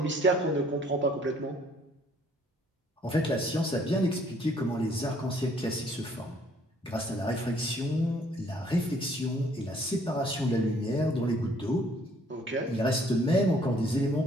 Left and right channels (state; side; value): normal; both; correlation 0.62